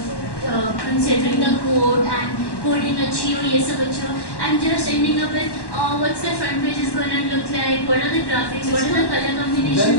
considering the code and coding I'm just ending up with what's the front page is going to look like, what are the graphics, what are the color combinations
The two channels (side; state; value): right; late; 1.1 ms